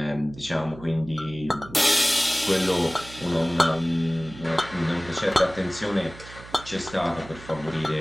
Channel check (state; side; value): noise; right; hum, 17 dB below the sound